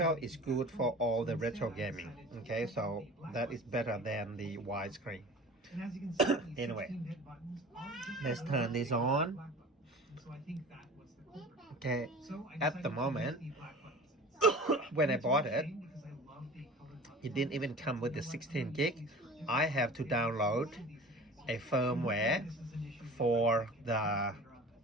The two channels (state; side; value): normal; both; correlation 0.40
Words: is good for all the retro gaming. Okay, so that is better than the widescreen. Anyway, let's turn this on. Okay, at the moment, when I bought it, it didn't even come with the 16 gig. I have to download a firmware for the